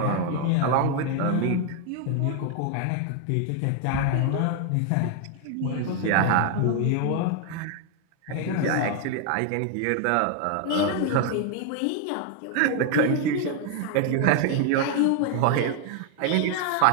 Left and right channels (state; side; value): different; both; correlation 0.00